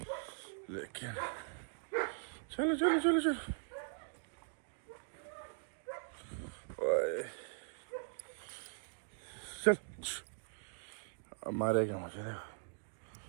लेकिन चलो ओए, चल मारेगा मुझे,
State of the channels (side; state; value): left; silent; digital silence